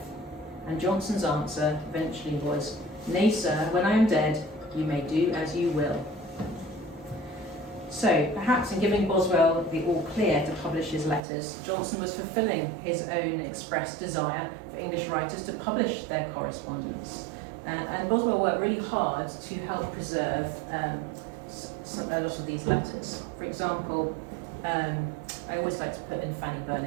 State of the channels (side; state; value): left; drops out; at 11.2 s